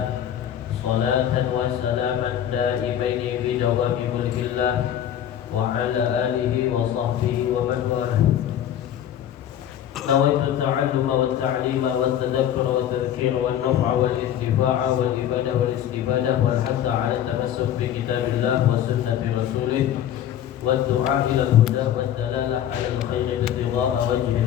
صلاة وسلاما دائمين بدوام ملك الله وعلى آله وصحبه ومن والاه. نويت التعلم والتعليم والتذكر والتذكير والنفع والانتفاع والإفادة والاستفادة والحث على التمسك بكتاب الله وسنة رسوله والدعاء إلى الهدى والدلالة على الخير ابتغاء وجه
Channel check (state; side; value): quieter; right; 10.6 dB